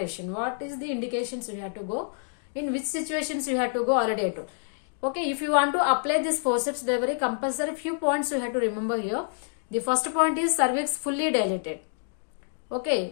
What is the indications we have to go? In which situations you have to go? Already I told. Okay, if you want to apply this forceps delivery, compulsory few points you have to remember here. The first point is cervix fully dilated.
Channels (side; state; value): right; silent; digital silence